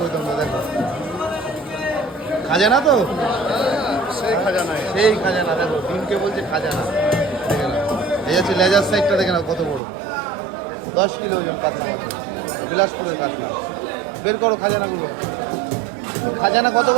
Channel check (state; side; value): drops out; left; at 9.8 s